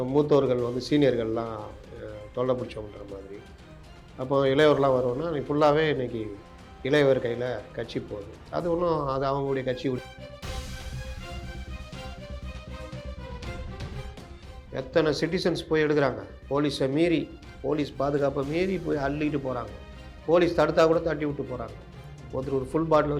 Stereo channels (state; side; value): identical; both; correlation 1.00